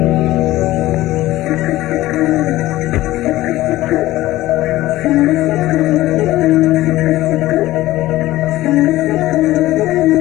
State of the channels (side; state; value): right; quieter; 16.5 dB